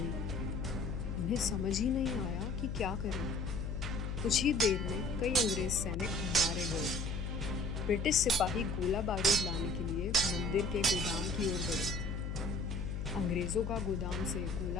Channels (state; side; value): noise; left; hum, 3 dB below the sound